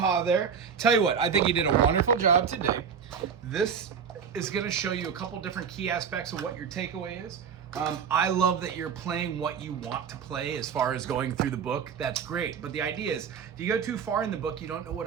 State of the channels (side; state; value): left; quieter; 6.9 dB